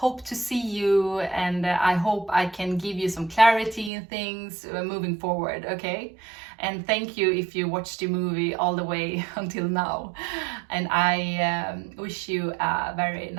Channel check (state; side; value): drops out; left; at 3.9 s